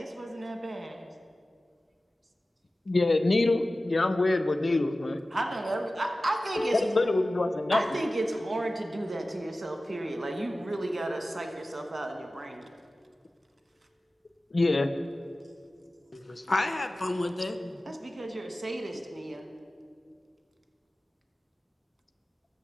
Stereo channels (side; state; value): both; normal; correlation 0.96